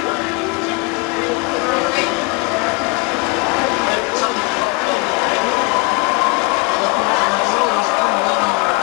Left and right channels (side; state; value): right; quieter; 28.2 dB